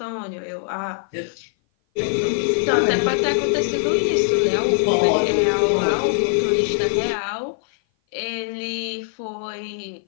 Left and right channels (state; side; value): silent; right; 57 dB below the other